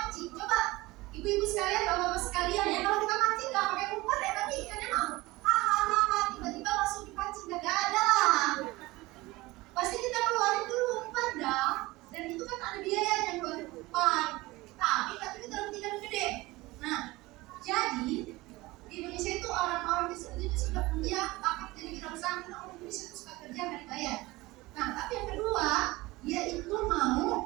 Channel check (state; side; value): quieter; left; 20.5 dB